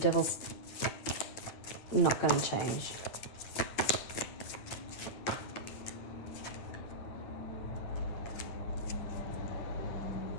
not going to change.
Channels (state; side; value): late; right; 9.7 ms